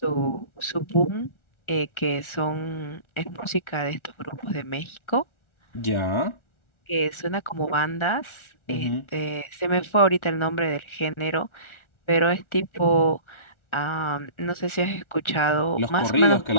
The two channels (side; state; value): right; late; 1.4 ms